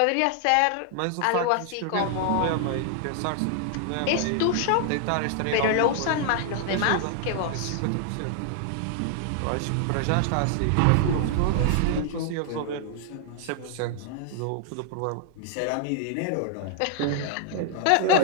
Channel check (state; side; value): different; both; correlation 0.00